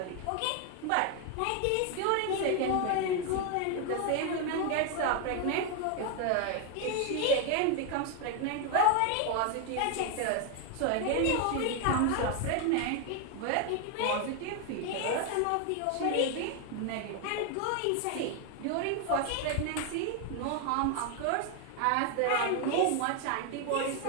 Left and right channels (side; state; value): both; different; correlation 0.01